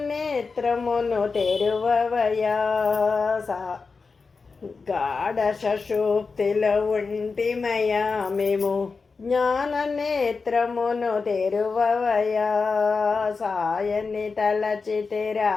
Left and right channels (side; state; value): right; quieter; 4.6 dB